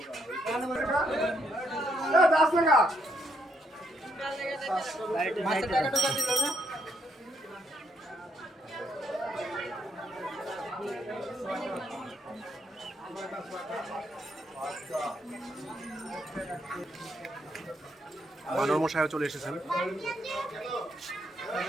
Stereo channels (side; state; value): both; normal; correlation 0.75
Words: বানর মশাইও চলে এসেছেন।